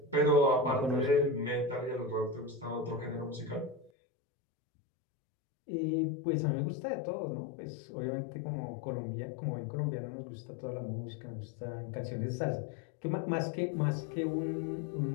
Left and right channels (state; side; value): drops out; right; at 3.9 s